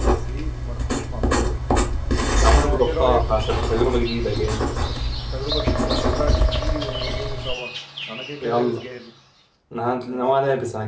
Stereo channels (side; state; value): both; identical; correlation 1.00